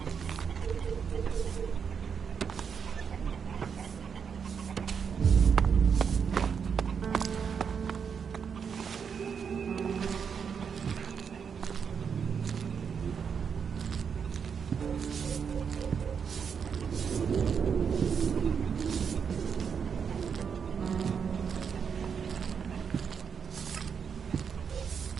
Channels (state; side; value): quieter; left; 6.7 dB